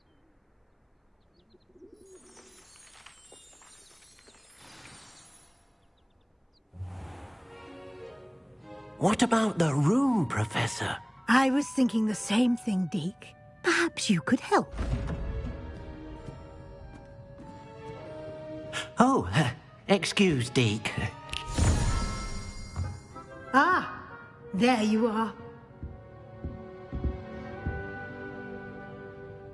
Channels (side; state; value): both; identical; correlation 1.00